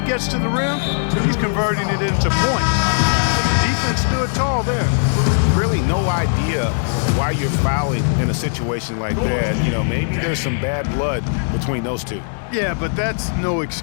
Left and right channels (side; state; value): right; silent; digital silence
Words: gets to the rim, he's converting it into points. Defense stood tall there. Really no idea why you're fouling in a situation like that. You know, maybe there's some bad blood between those two. Yeah, but that's no